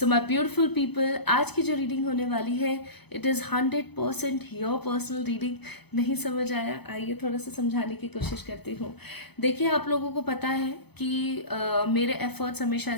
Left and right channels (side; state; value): right; late; 0.98 ms